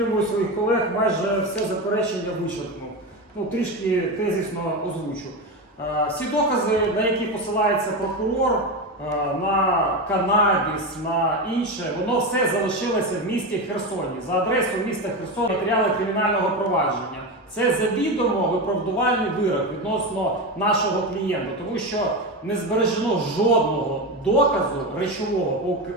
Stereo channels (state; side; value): normal; both; correlation 0.18